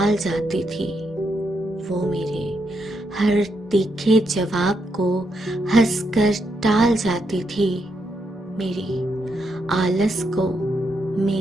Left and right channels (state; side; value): normal; both; correlation 0.80